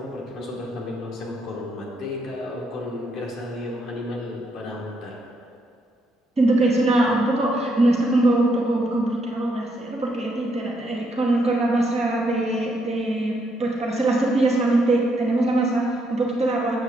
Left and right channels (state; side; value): normal; both; correlation 0.76